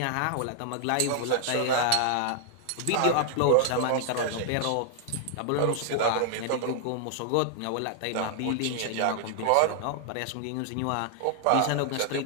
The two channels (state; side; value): different; both; correlation -0.01